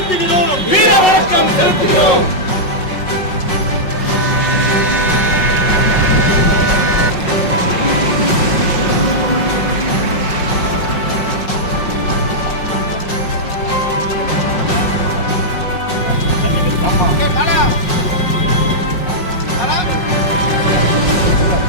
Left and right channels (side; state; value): right; late; 5.5 ms